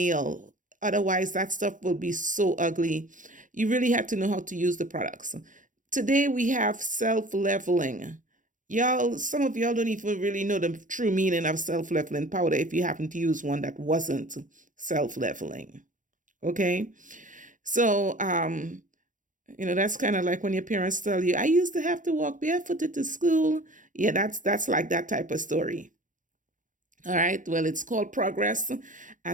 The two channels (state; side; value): late; left; 0.38 ms